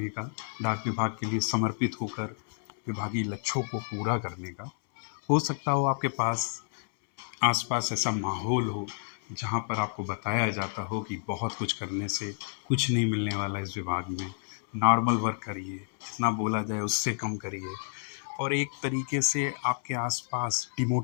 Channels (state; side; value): silent; right; 58 dB below the other